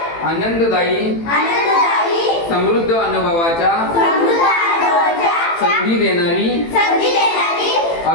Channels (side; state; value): right; late; 18 ms